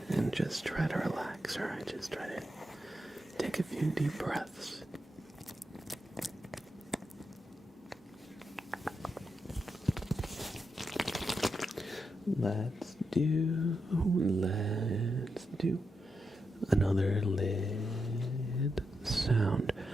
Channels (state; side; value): normal; both; correlation 0.85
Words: And just try to relax, alright? Just try to take a few deep breaths. Let's do another lid sound.